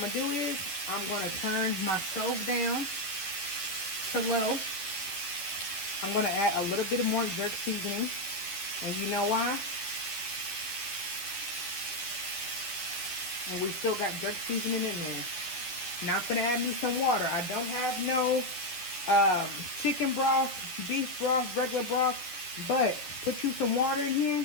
to do is, I'm going to turn my stove down to low. I'm going to add a little bit more jerk seasoning. And you know why? And we still got jerk seasoning in there. Now I'm gonna add me some water. I don't have no chicken broth, beef broth, regular broth, but put you some water in here.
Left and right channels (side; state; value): right; late; 11 ms